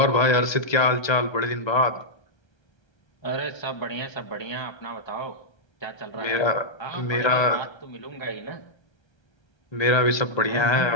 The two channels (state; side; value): late; right; 1.3 ms